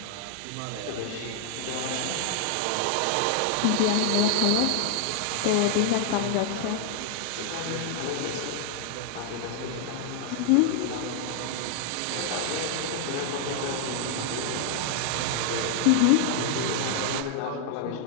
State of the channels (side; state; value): both; different; correlation 0.00